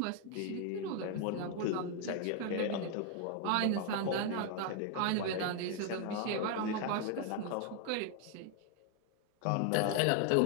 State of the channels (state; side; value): different; both; correlation 0.00